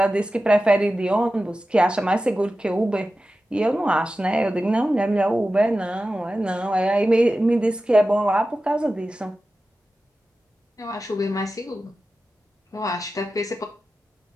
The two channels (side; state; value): both; normal; correlation 0.94